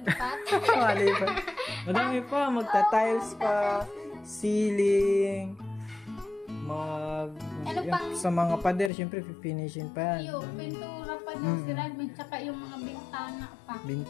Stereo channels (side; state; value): right; drops out; at 8.9 s